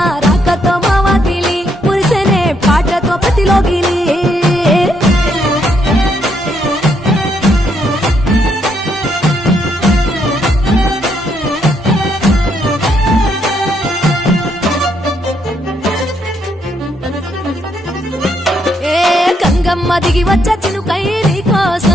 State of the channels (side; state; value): both; normal; correlation 0.74